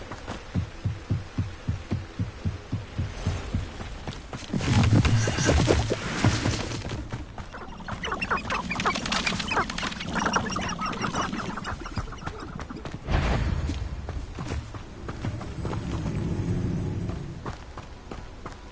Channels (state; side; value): identical; both; correlation 1.00